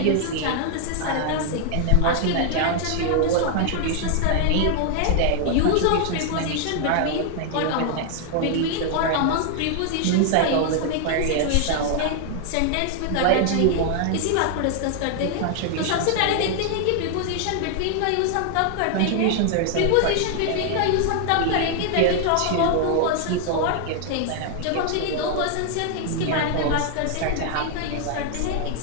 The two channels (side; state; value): both; different; correlation 0.00